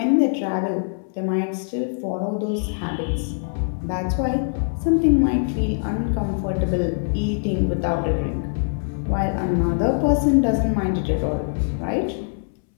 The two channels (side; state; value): right; silent; 64 dB below the other